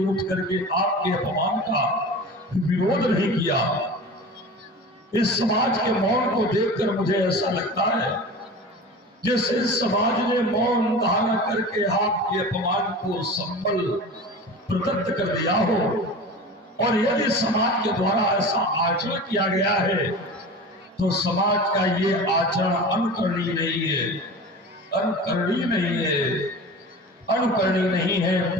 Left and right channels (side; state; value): both; normal; correlation 0.34